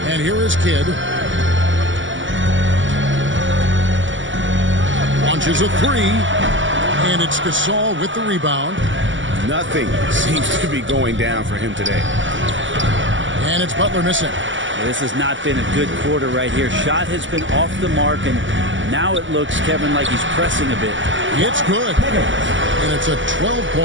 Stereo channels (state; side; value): late; left; 0.55 ms